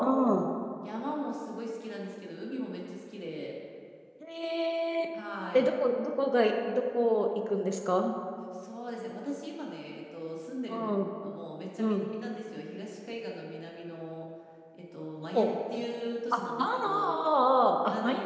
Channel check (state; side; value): identical; both; correlation 1.00